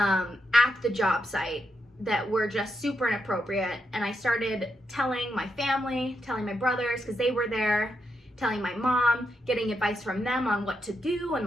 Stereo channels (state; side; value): normal; both; correlation 0.83